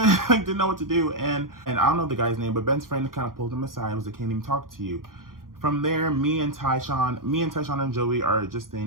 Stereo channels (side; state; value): left; late; 0.91 ms